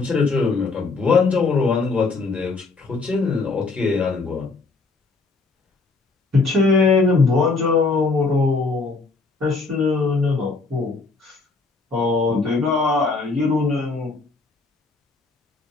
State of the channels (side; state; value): right; quieter; 3.9 dB